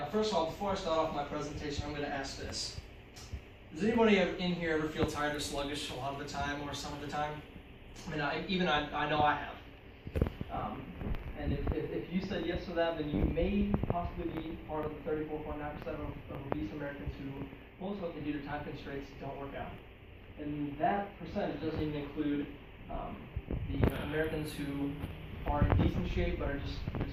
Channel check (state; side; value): identical; both; correlation 1.00